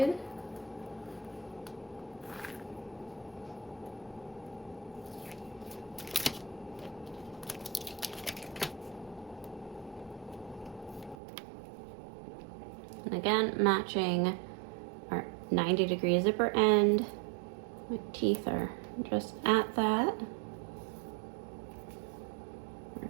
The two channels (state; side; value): drops out; left; at 11.2 s